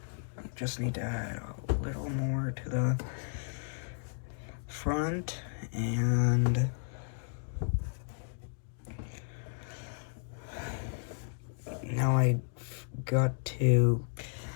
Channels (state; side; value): silent; right; digital silence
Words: just need to add a little more to the front, and now I got to